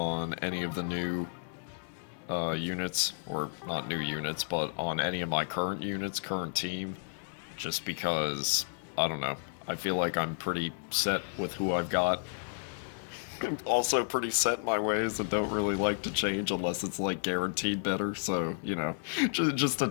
any of the new units, or not new units, but on any of my current units, current team, just because, I don't know, I feel like I'm pretty set with who I've got. I'm also pretty set in my ways and don't really like to change unless it's like guaranteed better, so, you know, just a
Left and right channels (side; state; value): right; silent; digital silence